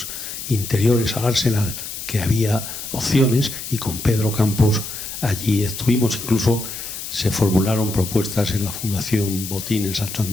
interiores al Arsenal, que había opciones, y con Pedro Campos allí estuvimos. Incluso se formularon propuestas en la Fundación Botín en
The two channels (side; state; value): left; noise; hiss, 8 dB below the sound